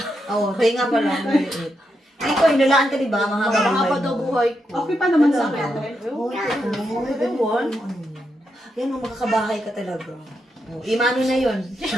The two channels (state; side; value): normal; both; correlation 0.83